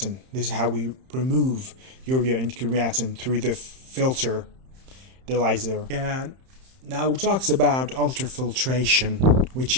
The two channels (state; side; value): late; left; 31 ms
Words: This is how we remove urea and creatinine through the filter dialyzer. And now it talks about ultrafiltration, which